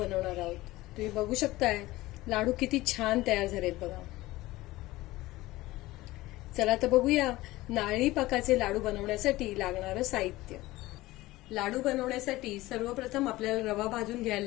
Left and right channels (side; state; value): right; quieter; 18.3 dB